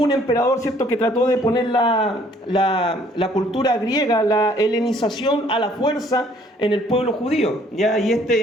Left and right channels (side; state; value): both; normal; correlation 0.60